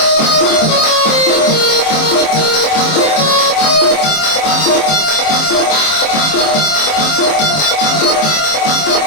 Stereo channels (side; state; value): right; late; 26 ms